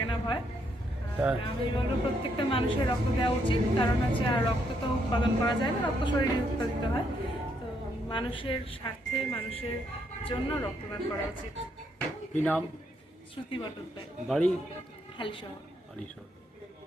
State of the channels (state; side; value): normal; both; correlation 0.75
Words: না ভয়। আমি বলবো প্রত্যেকটা মানুষের রক্ত দেওয়া উচিত। কারণ হচ্ছে আর রক্ত তো উৎপাদন করা যায় না, রক্ত শরীরে উৎপাদিত হয়। তো মানুষের স্বার্থে, মানুষের জন্য রক্তদান করা উচিত। কি নাম? শ্রুতি বটদ্দায়, বাড়ি? হালিশহর।